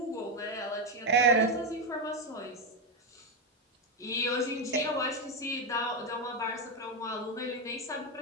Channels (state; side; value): normal; both; correlation 0.08